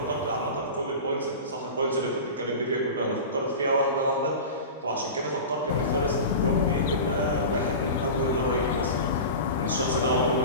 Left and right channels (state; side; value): inverted; both; correlation -0.30